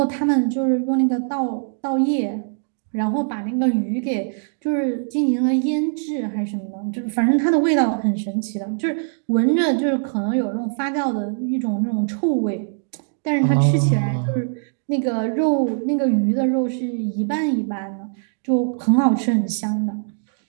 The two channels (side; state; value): left; silent; digital silence